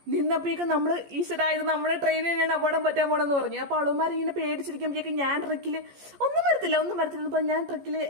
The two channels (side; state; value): left; late; 14 ms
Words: നിന്നപ്പോഴേക്കും നമ്മൾ ഈശ്വരായത് നമ്മുടെ ട്രെയിനിൽ തന്നെയാണ് അപകടം പറ്റാൻ പോണെന്ന് പറഞ്ഞു. അപ്പോൾ അവളുമാർ ഇങ്ങനെ പേടിച്ചിരിക്കുമ്പോഴേക്കും ഞാൻ ട്രക്കിൽ ഒന്നും വരത്തില്ല അപ്പോൾ ഞാൻ ട്രക്കിൽ